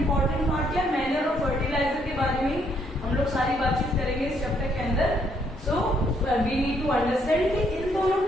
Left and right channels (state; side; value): normal; both; correlation 0.71